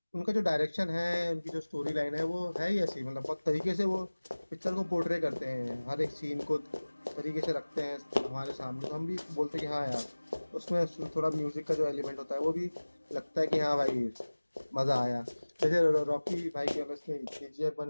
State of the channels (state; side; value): inverted; both; correlation -1.00